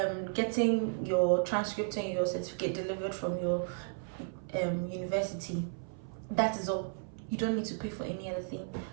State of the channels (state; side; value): silent; left; 55 dB below the other